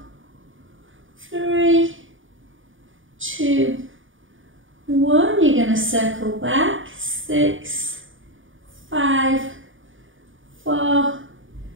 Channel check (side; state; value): left; late; 0.57 ms